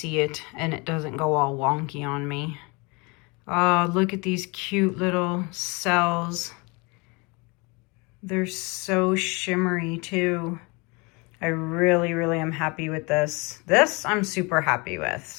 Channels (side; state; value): right; quieter; 28.3 dB